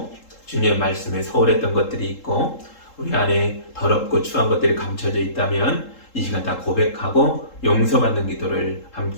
주님의 말씀에 소홀했던 것들이 있고 우리 안에 더럽고 추한 것들이 감춰져 있다면 이 시간 다 고백하고 용서받는 기도를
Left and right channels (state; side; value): late; right; 3.7 ms